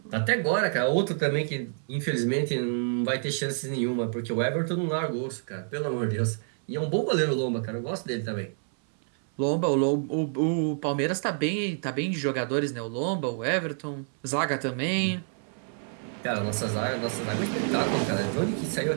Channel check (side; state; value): left; silent; 59 dB below the other